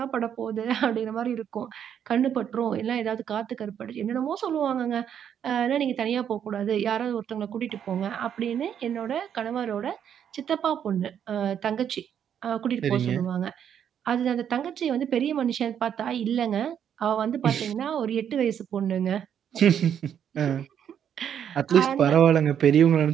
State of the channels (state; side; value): quieter; left; 8.9 dB